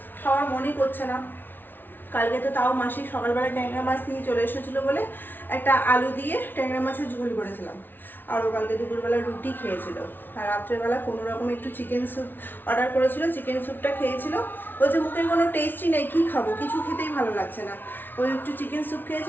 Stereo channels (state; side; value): late; right; 0.094 ms